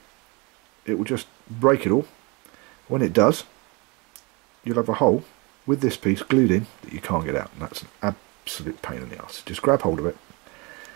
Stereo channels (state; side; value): quieter; left; 28.0 dB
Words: it will just break it all. When it does, you'll have a hole with this piece glued in that you can't get out, and that's an absolute pain in the ass. Just grab hold of it,